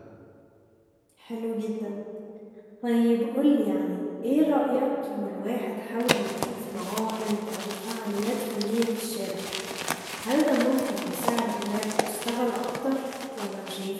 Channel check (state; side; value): identical; both; correlation 1.00